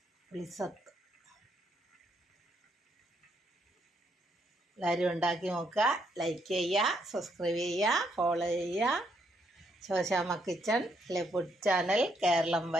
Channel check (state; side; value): normal; both; correlation 0.74